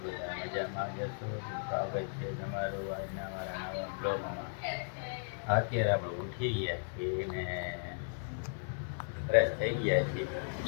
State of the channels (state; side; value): silent; right; digital silence